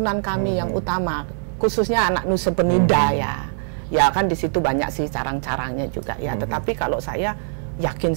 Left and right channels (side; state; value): left; silent; digital silence